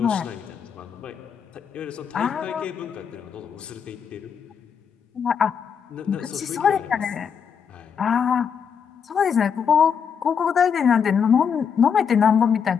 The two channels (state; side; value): quieter; right; 7.1 dB